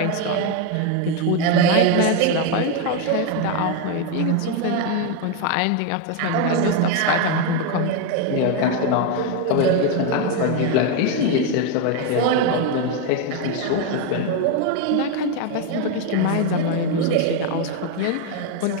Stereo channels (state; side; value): different; both; correlation 0.01